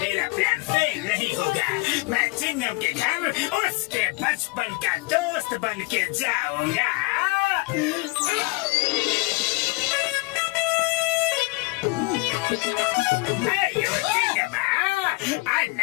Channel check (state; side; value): quieter; right; 24.7 dB